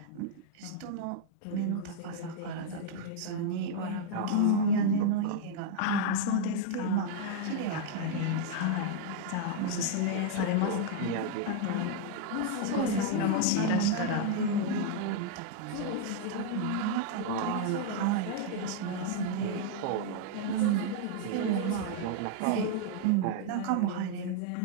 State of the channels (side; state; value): both; different; correlation 0.00